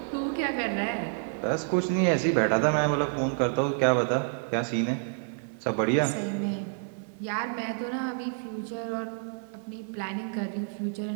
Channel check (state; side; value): silent; left; digital silence